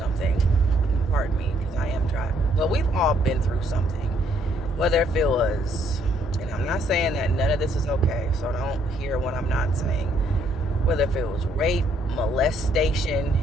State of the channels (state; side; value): normal; both; correlation 0.68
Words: Pardon me, because I am driving. But we've all been through something. Whether if it was, and I'm not saying that none of this is okay, so don't hear what I'm not saying. Whether if it was rape, molestation,